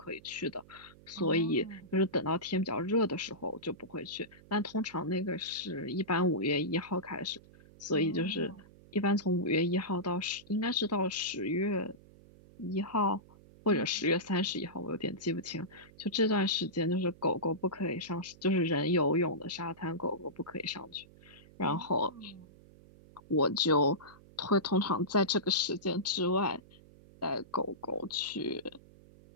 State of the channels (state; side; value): noise; right; hum, 23 dB below the sound